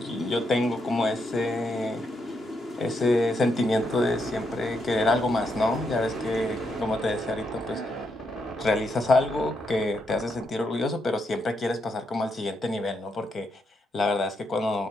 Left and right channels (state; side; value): normal; both; correlation 0.80